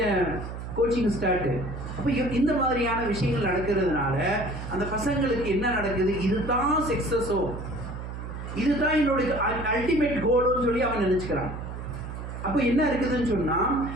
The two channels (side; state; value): right; noise; hum, 8 dB below the sound